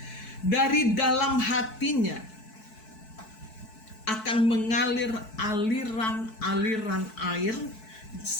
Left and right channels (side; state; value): right; late; 4.6 ms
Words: dari dalam hatinya akan mengalir aliran-aliran air,